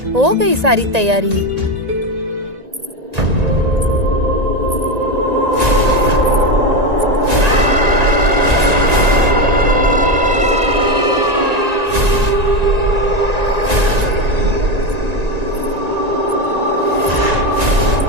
हो गई सारी तैयारी?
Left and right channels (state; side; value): late; left; 1.9 ms